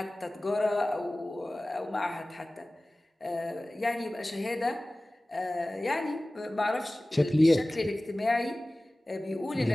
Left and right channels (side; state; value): both; normal; correlation 0.98